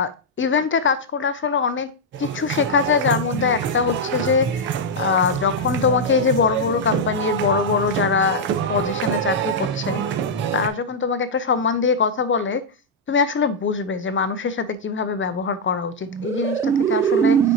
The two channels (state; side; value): normal; both; correlation -0.03